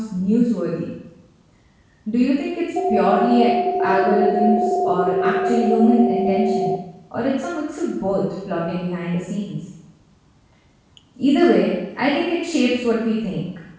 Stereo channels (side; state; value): both; identical; correlation 1.00